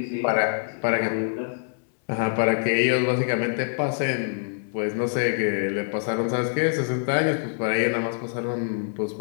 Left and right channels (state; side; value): silent; right; digital silence